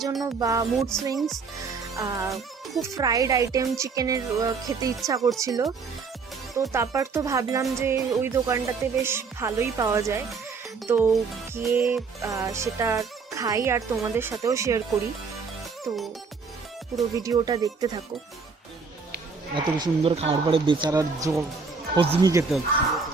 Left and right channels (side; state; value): left; quieter; 5.0 dB